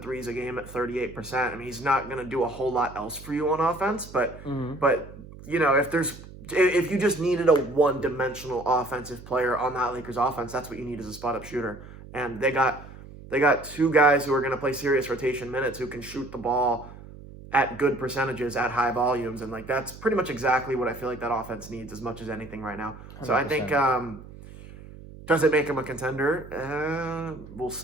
threes a game at 38%. I mean, he's not going to do a whole lot else for you on offense, but if you just needed a one-dimensional offensive player on that Lakers offense, that's what you need as a spot-up shooter. And they got 2 guys who are going to play serious rotation minutes who can shoot the ball at good percentages at high volumes, and like that's pretty much exactly what I feel like that offense needs as much as anything right now. 100%. So I think Does it make him a contender? We'll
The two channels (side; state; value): right; noise; hum, 16 dB below the sound